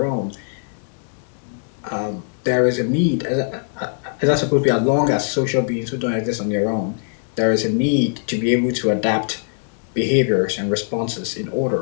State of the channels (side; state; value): right; silent; digital silence